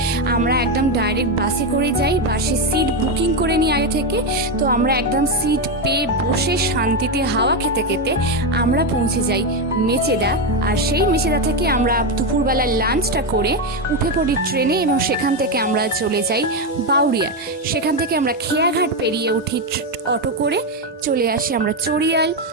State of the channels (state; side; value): normal; both; correlation 0.08